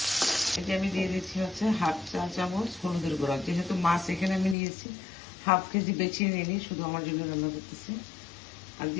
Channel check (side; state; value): right; drops out; at 4.5 s